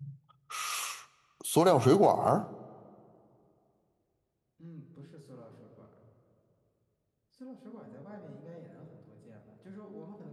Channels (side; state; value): both; identical; correlation 1.00